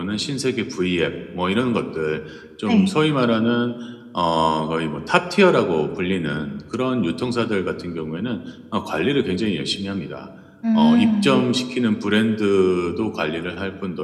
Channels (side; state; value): both; identical; correlation 1.00